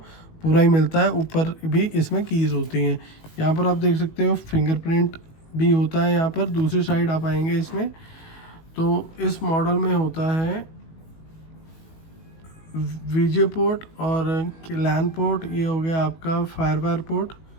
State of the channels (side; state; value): right; late; 19 ms